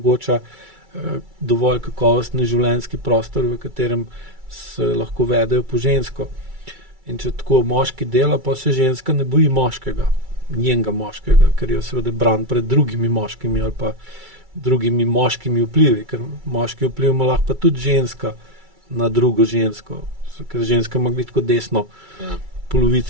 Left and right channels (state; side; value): late; left; 2.3 ms